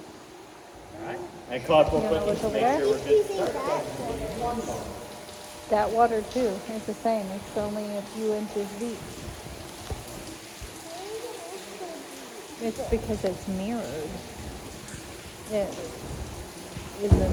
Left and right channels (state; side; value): identical; both; correlation 1.00